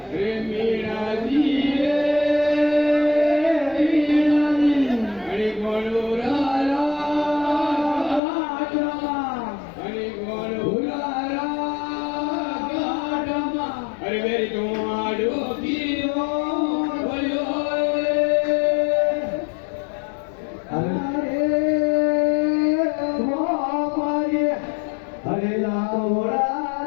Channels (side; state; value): right; drops out; at 8.2 s